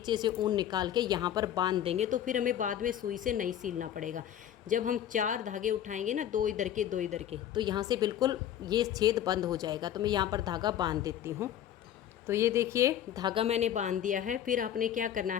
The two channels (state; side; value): quieter; right; 10.7 dB